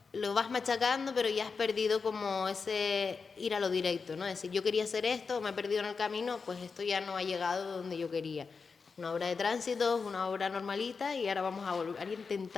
lo vas machacando, pero ya has perdido como ese ir a lo directo, ¿no? Es decir, yo quería hacer esto, me he perdido en el camino, pues esto ya no ha llegado donde yo quería. Una obra de tránsito, una obra normalita y ahora vamos a volver a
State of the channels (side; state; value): right; quieter; 5.0 dB